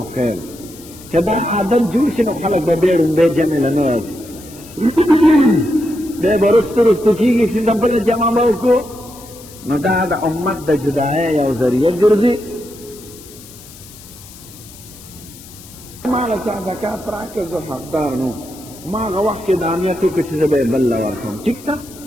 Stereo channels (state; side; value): noise; left; hiss, 19 dB below the sound